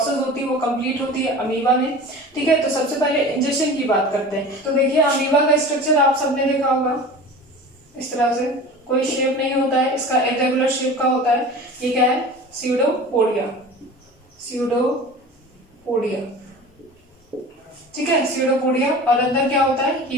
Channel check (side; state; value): both; normal; correlation 0.37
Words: होती है वो कंप्लीट होती है अमीबा में। ठीक है, तो सबसे पहले इंजेशन की बात करते हैं। तो देखिए, अमीबा का स्ट्रक्चर आप सबने देखा होगा, इस तरह से कोई शेप नहीं होता है, इसका इरेगुलर शेप का होता है। ये क्या है? Pseudopodia, pseudopodia. ठीक है, स्यूडोपोडिया। और अंदर क्या होता है